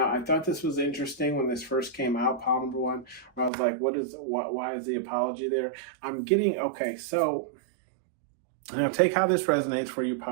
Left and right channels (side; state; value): left; drops out; at 3.5 s